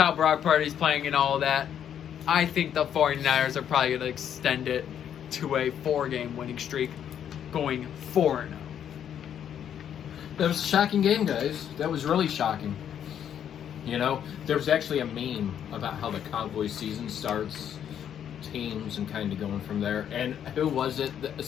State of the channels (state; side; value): quieter; right; 9.3 dB